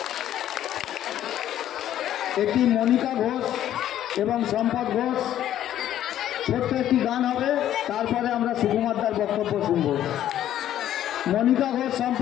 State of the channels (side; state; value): right; quieter; 11.7 dB